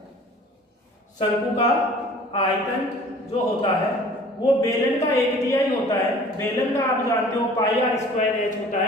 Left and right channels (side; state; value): both; normal; correlation 0.48